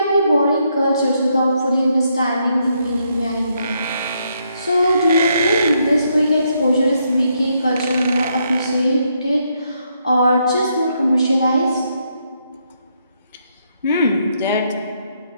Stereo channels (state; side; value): inverted; both; correlation -0.76